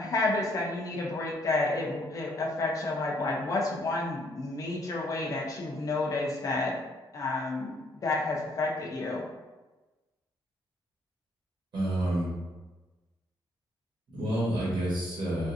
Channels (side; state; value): both; normal; correlation 0.68